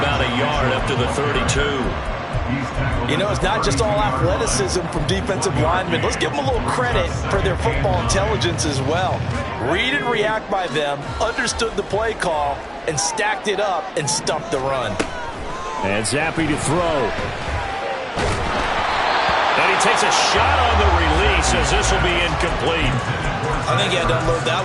a yard up to the 32. You know, it's not just all athleticism from defensive linemen. Let's give them a little credit for their football intelligence as well. Read and react by them, understood the play call, and stacked it up and stuffed the run. And Zappi to throw. And he takes a shot on the release as this will be incomplete. I think he had to unload that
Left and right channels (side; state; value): both; identical; correlation 1.00